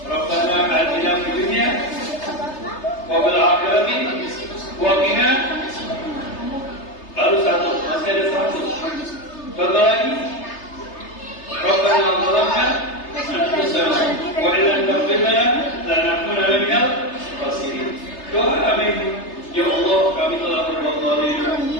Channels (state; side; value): late; right; 3.3 ms